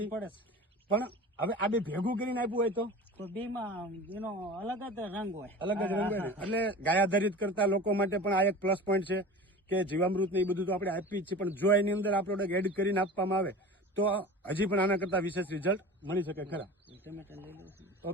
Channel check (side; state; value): both; normal; correlation 0.36